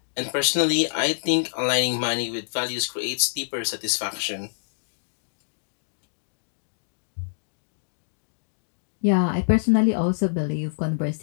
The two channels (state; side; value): silent; right; digital silence